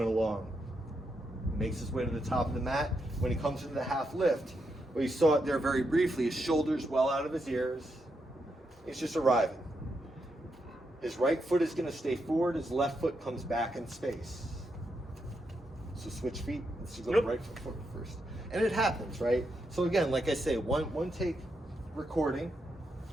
along. Makes his way to the top of the mat. When he comes into the half lift, Well, you saw it there very briefly. His shoulders well out of his ears. He's just arriving. His right foot is going to stay forward. His left foot comes back in space. So switch feet. Let's go right foot forward first. And it happens, right? So again, like I say, one take recording,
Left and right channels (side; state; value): both; normal; correlation 0.82